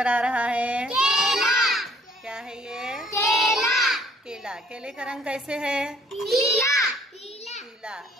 आ रहा है? केला। क्या है ये? केला। केला। केले का रंग कैसे है? पीला। पीला।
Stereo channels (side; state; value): both; normal; correlation 0.59